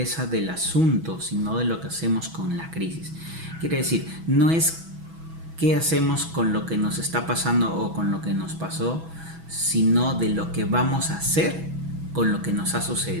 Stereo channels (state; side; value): late; left; 6.1 ms